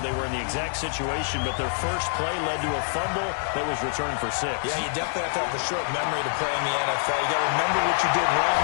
they were in the exact situation, but their first play led to a fumble that was returned for 6. Yeah, you definitely have to have a short memory to play in the NFL. You got to remember what you did wrong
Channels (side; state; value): right; silent; 61 dB below the other